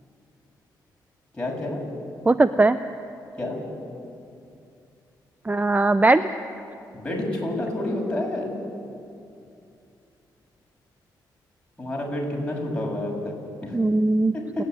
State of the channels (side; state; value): both; normal; correlation 0.87